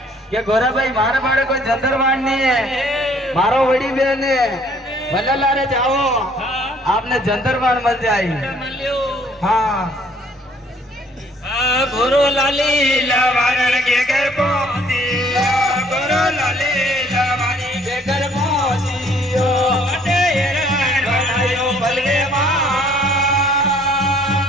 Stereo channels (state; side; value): normal; both; correlation 0.60